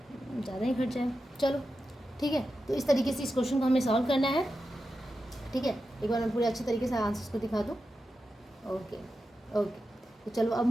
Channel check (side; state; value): both; normal; correlation 0.90